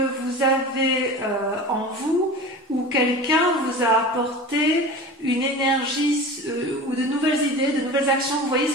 avez en vous ou quelqu'un vous a apporté une énergie ou de nouvelles idées, de nouvelles actions. Vous voyez,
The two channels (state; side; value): normal; both; correlation 0.34